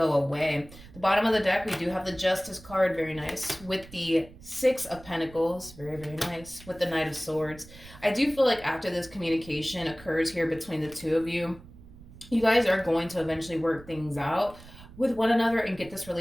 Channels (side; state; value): right; noise; rumble, 19 dB below the sound